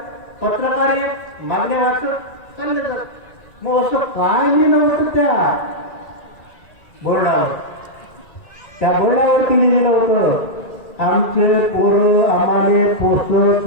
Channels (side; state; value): right; late; 2.3 ms